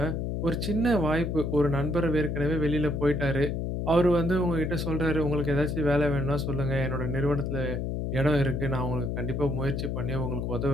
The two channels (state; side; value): noise; left; hum, 2 dB below the sound